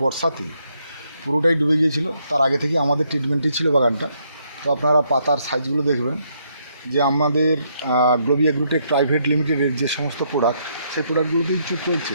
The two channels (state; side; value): inverted; both; correlation -0.74